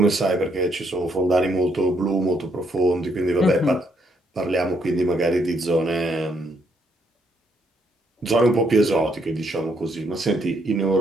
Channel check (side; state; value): both; normal; correlation 0.73